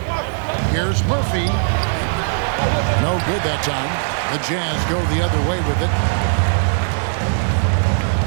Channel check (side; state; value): left; silent; digital silence